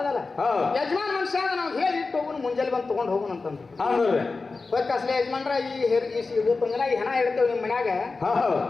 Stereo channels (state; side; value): quieter; right; 4.0 dB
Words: ಯಜಮಾನ್ ಮನುಷ್ಯ ಅದ, ನಾವು ಹೇಳಿ ಇಟ್ಟು ಹೋಗುನು, ಮುಂಜಾನೆ ಬಂದು ತಗೊಂಡ್ ಹೋಗುನು ಅಂತಂದ್ರು. ಅಸಲೇ ಯಜಮಾನ್ರ ಇವತ್ತಿನ ದಿನ ಈ ಹೆಣ ಇಡ್ತೇವೆ ನಿಮ್ ಮನ್ಯಾಗ,